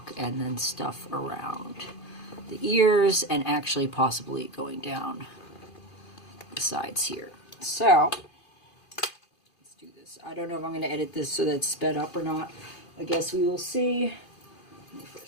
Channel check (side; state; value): right; late; 2.5 ms